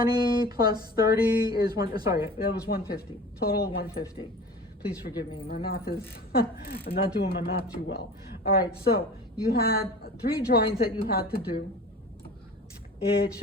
plus 30 is sorry, that was 150. Total of 150. Please forgive me. My math is, I'm not doing my math too well. All right, so you had 3 drawings that you had to do. It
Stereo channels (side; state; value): both; normal; correlation 0.39